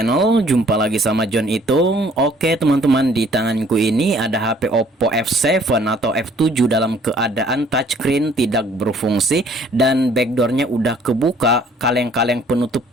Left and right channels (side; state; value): both; normal; correlation 0.58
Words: Jumpa lagi sama John Itung. Oke teman-teman, di tanganku ini ada HP Oppo F7 atau F7 dalam keadaan touchscreen tidak berfungsi dan backdoornya udah kebuka. Kaleng-kaleng penutup